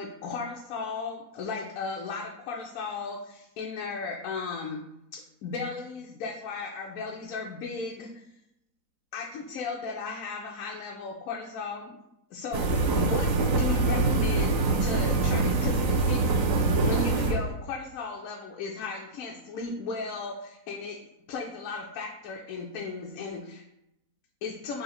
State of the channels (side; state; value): right; late; 4.0 ms